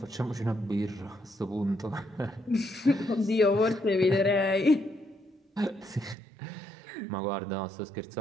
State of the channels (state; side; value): drops out; left; at 6.2 s